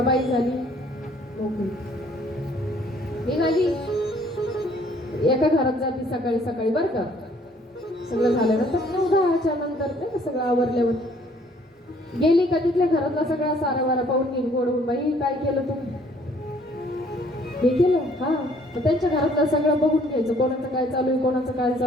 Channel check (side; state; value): both; normal; correlation 0.61